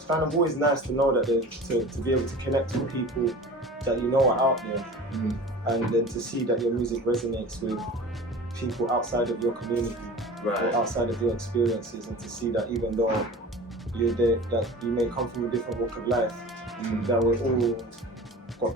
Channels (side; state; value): both; normal; correlation 0.38